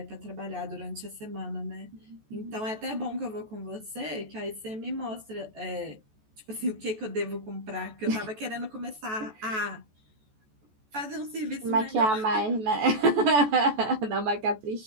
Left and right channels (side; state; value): left; late; 14 ms